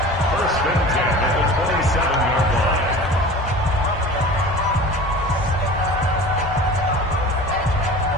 First and 10 at the 27-yard line.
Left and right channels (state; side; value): normal; both; correlation 0.39